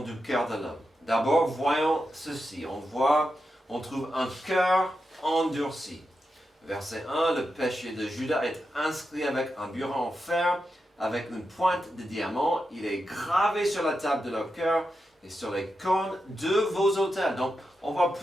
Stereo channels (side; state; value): both; normal; correlation 0.88